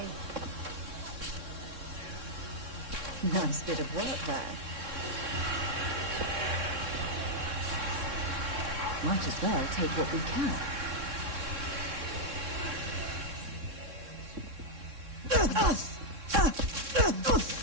Nice bit of work there. Might as well take what we can.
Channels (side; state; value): left; late; 3.6 ms